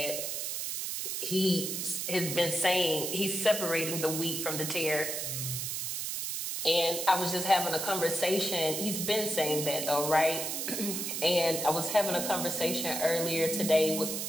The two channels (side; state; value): right; noise; hiss, 3 dB below the sound